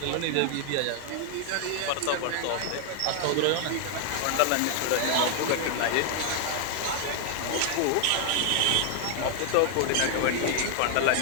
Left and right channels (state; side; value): different; both; correlation 0.00